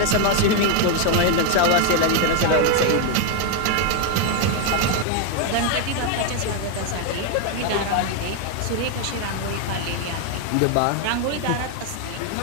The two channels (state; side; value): different; both; correlation 0.01